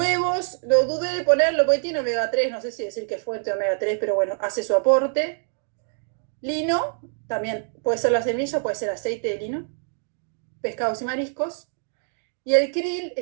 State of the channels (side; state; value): left; silent; digital silence